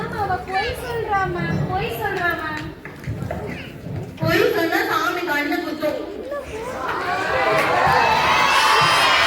அவ பொய் சொல்றா மேம், பொய் சொல்றா மேம். பொய் சொன்னா சாமி கண்ணு குத்தும்.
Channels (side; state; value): both; identical; correlation 1.00